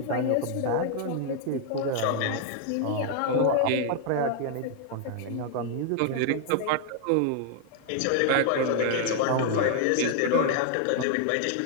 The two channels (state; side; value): different; both; correlation 0.00